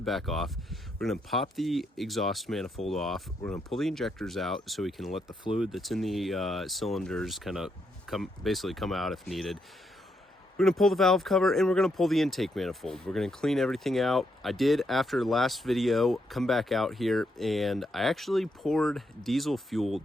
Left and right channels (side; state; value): both; normal; correlation 0.78